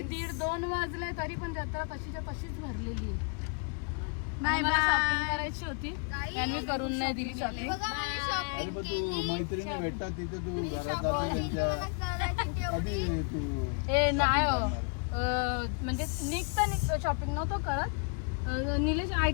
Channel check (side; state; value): right; quieter; 37.4 dB